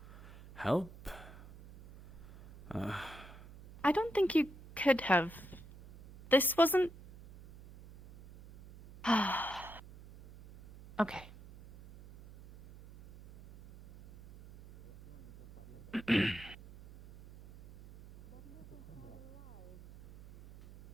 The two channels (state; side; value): noise; right; hum, 18 dB below the sound